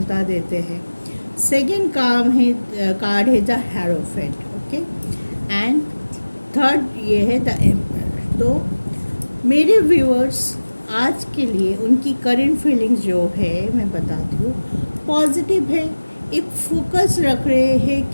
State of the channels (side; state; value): both; inverted; correlation -1.00